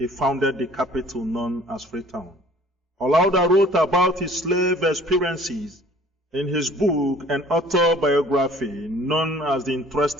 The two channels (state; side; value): normal; both; correlation 0.52